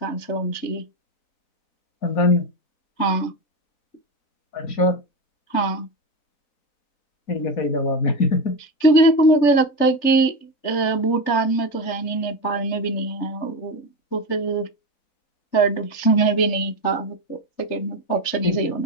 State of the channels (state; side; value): late; right; 4.0 ms